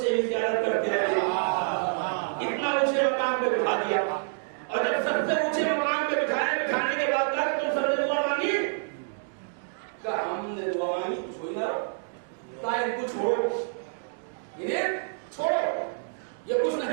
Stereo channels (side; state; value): left; silent; digital silence